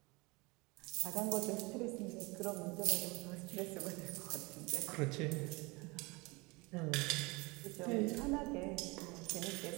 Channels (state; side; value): quieter; left; 25.5 dB